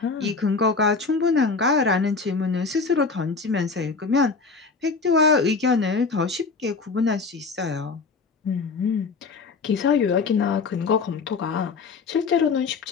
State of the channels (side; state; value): right; quieter; 4.5 dB